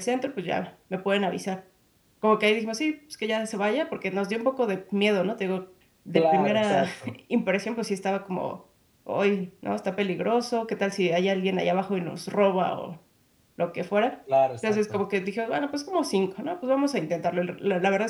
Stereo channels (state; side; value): identical; both; correlation 1.00